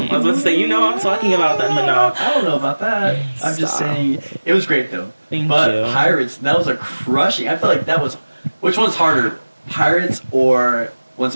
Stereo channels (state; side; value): inverted; both; correlation -1.00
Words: was about to say, you know who I'm talking about then, but no. I don't know about that. I'm just saying it was great though. Thank but you. Pirates, that was a crushing. I feel like that was. Which one's harder, Pirates or Once